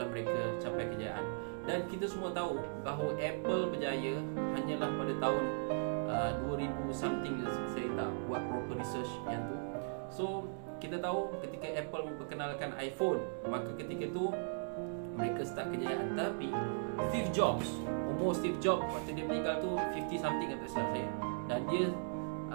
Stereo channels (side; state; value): left; silent; digital silence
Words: mereka capai kejayaan. Dan kita semua tahu bahawa Apple berjaya hanyalah pada tahun 2000 something. Saya tak buat proper research yang tu. So kita tahu ketika Apple memperkenalkan iPhone, maka ketika tu mereka start kejayaan. Tapi Steve Jobs, umur Steve Jobs waktu dia meninggal tu 50 something kata saya. Dan